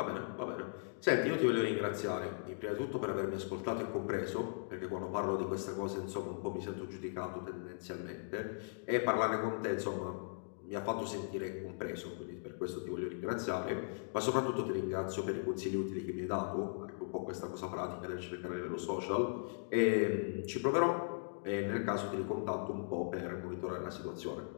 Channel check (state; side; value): silent; right; digital silence